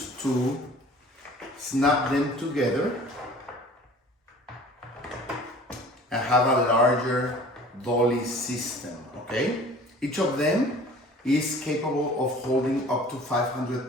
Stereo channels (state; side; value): normal; both; correlation 0.47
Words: to snap them together and have a larger dolly system, okay? Each of them is capable of holding up to